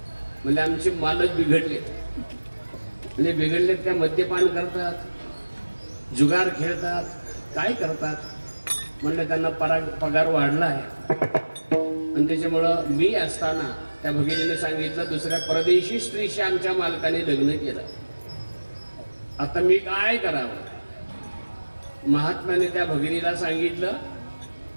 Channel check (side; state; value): both; inverted; correlation -1.00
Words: म्हणजे आमचे मालक बिघडलेत. म्हणजे बिघडलेत काय? मद्यपान करतात, जुगार खेळतात, काय करतात? म्हणलं त्यांना पगार वाढला आहे आणि त्याच्यामुळं मी असताना त्या भगिनीने सांगितलं, दुसऱ्या परदेशी स्त्रीशी आमच्या मालकाने लग्न केलं. आता मी काय करावं? महात्म्याने त्या भगिनीला सांगितलं,